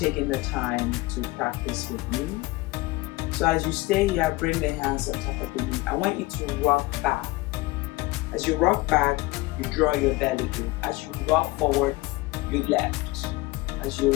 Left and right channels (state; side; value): quieter; right; 21.0 dB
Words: the time to practice with me. So as you stay here, bring the hands on top of the knee. I want you to rock back. As you rock back, you draw your belly in. As you rock forward, you lift. As you